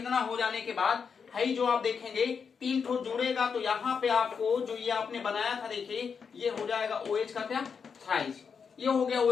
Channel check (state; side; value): quieter; right; 6.1 dB